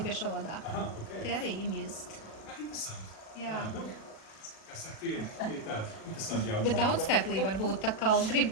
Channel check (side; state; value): right; late; 37 ms